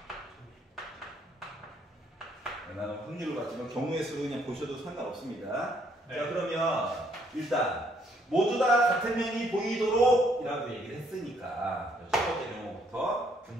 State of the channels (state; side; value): normal; both; correlation 0.68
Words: 나는 확률로 봤지만 경우의 수로 그냥 보셔도 상관없습니다. 네. 자 그러면 일단 모두 다 같은 면이 보이도록 이라고 얘기를 했으니까 첫 번째 경우부터